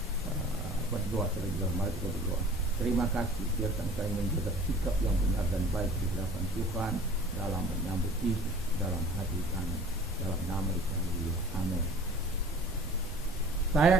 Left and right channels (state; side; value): normal; both; correlation 0.46